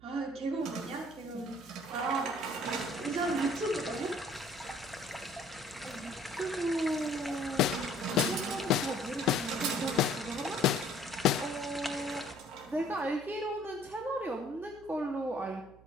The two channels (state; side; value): noise; right; hum, 23 dB below the sound